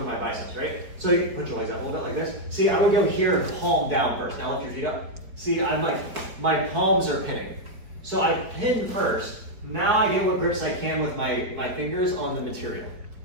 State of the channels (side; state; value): left; late; 4.4 ms